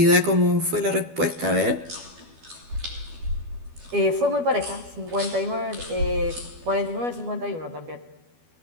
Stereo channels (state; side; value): late; left; 12 ms